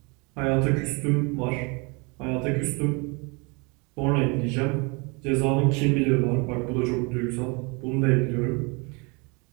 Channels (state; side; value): quieter; left; 30.1 dB